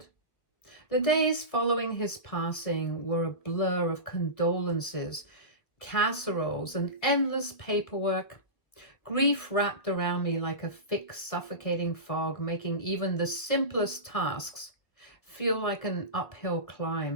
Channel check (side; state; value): right; late; 1.9 ms